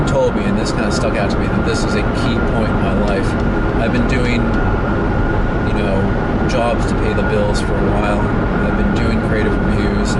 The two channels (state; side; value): identical; both; correlation 1.00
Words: told me, and this kind of stuck out to me, that this is a key point in my life. I've been doing jobs to pay the bills for a while. I've been doing creative reviews